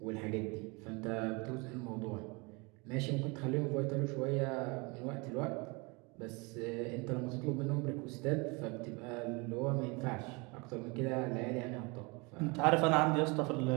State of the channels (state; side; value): quieter; left; 28.3 dB